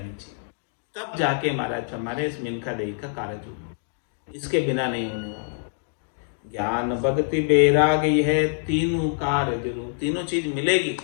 चाहिए। तब जाके महाराज हमारे इस मिनखा देही का कार्य होगा, इसके बिना नहीं होने वाला। ज्ञान भक्ति वैराग यह तीनों कार्य जरूर, तीनों चीज मिलेगी,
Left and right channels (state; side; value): silent; right; digital silence